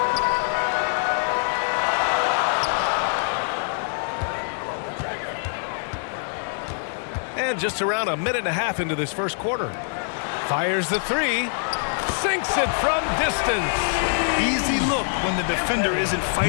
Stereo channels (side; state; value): right; silent; 62 dB below the other